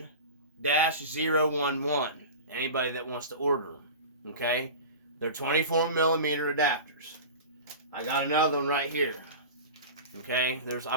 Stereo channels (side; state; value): both; inverted; correlation -0.32